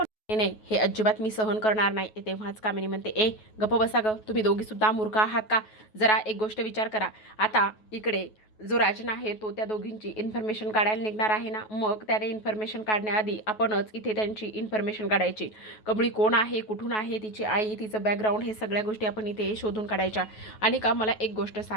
नाही नाही, हे अजिबात मी सहन करणार नाही. तेव्हाच कामिनी म्हणते, ए गप्प बसा गं, तुम्ही दोघीसुद्धा मूर्ख आहात का? जरा एक गोष्ट विचार करा. आता इकडे जो राजन आहे तो त्या दोघींची इन्फॉर्मेशन काढायला निघणार आहे ना, मग त्याने इन्फॉर्मेशन काढण्याआधी आपणच इथे त्यांची इन्फॉर्मेशन काढायची. कमळी कोण आहे, कुठून आहे, तिची आई, तिचं बॅकग्राऊंड, हे सगळ्या गोष्टी आपण इथे शोधून काढायच्या. आणि का मला एक गोष्ट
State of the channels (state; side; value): late; right; 9.3 ms